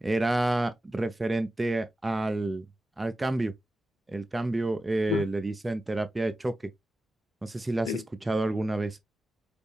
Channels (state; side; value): normal; both; correlation 0.93